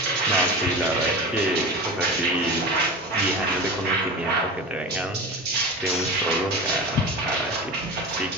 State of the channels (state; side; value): normal; both; correlation 0.30